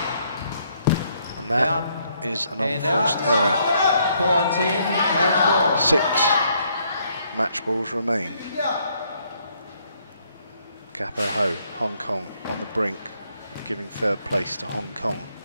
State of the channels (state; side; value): inverted; both; correlation -0.71